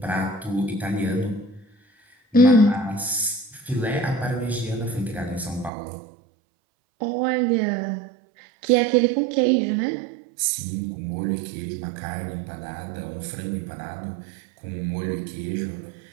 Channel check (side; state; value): left; drops out; at 5.7 s